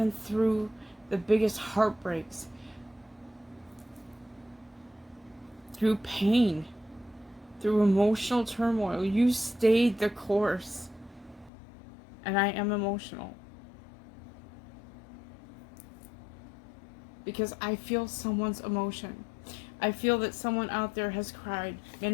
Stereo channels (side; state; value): right; drops out; at 11.5 s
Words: through the biggest heartbreaks, through pain, through emotional turmoil. You stayed the course. And I am emotional, because I feel someone's emotion. I feel that someone out there has cried